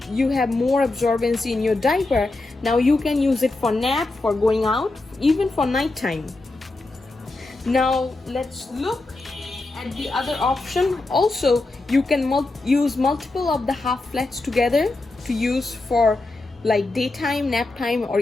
you have more absorbency in your diaper. Now you can use it for nap, for going out, even for nighttime. Now let's look at the other option. Also you can use multiple of the half flats together to use for like daytime, nap time, or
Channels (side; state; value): right; quieter; 3.1 dB